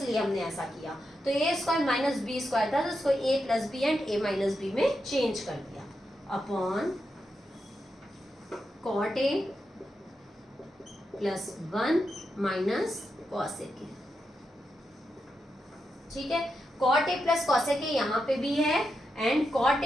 हमने ऐसा किया। तो A square minus B square था, तो उसको A plus B and A minus B में चेंज कर दिया, upon cot A plus 1 minus cosec A, ठीक है। Cot A plus cosec A यहाँ पे भी है and cot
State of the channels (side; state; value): both; normal; correlation 0.86